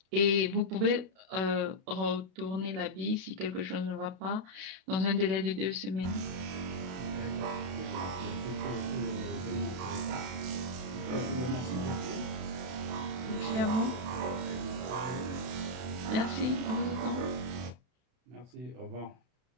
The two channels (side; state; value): left; late; 32 ms